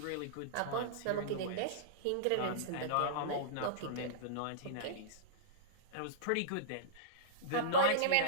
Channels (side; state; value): both; different; correlation -0.04